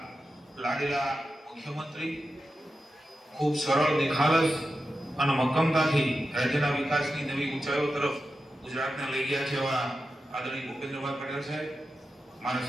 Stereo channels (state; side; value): normal; both; correlation 0.91